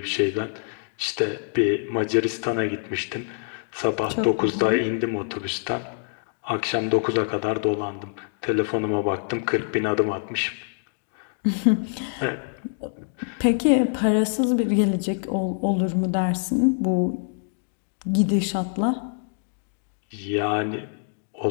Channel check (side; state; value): right; silent; 61 dB below the other